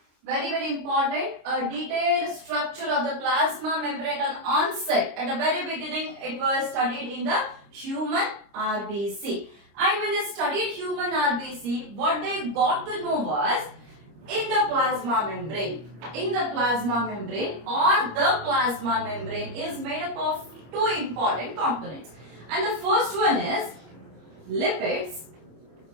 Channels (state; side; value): late; left; 26 ms